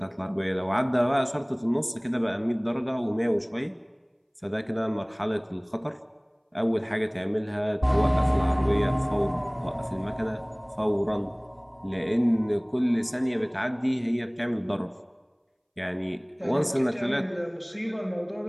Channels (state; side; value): identical; both; correlation 1.00